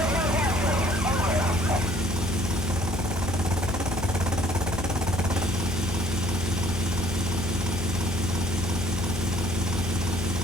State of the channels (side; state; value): left; noise; hum, 8 dB below the sound